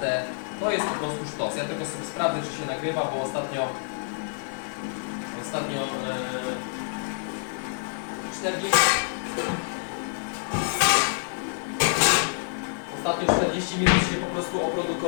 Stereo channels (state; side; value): silent; right; digital silence